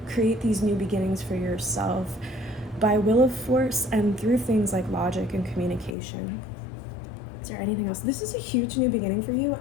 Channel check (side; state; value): right; drops out; at 6.0 s